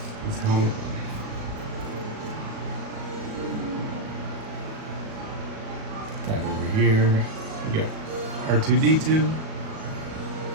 his helmet. That over here. We got R2-D2,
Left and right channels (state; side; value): late; left; 37 ms